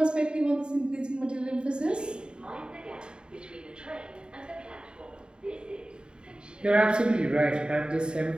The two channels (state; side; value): late; left; 0.050 ms